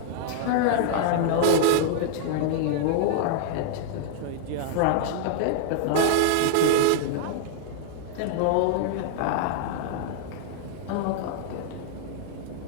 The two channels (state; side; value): different; both; correlation -0.01